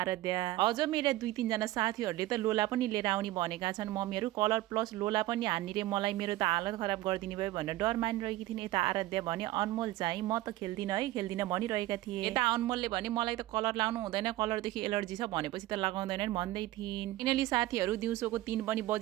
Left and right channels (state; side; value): quieter; left; 16.5 dB